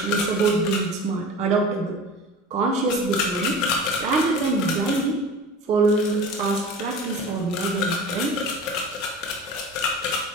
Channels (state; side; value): normal; both; correlation 0.36